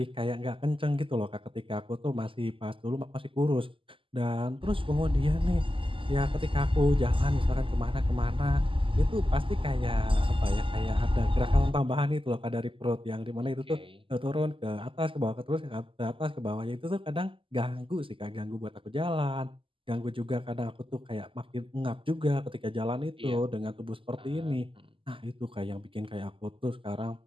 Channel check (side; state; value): left; late; 0.25 ms